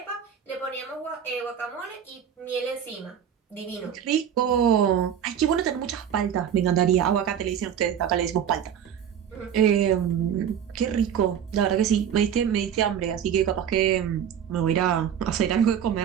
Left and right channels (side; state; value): left; quieter; 8.8 dB